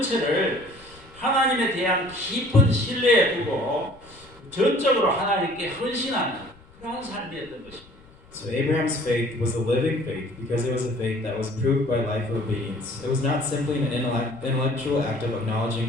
하나님에 대한 깊은 신뢰에 두고 전적으로 하나님께 헌신하는 그러한 삶이었던 것입니다. So Abraham's faith was a living faith because it was a faith that was proved by life of obedience. It was not simply an intellectual act of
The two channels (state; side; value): noise; left; rumble, 25 dB below the sound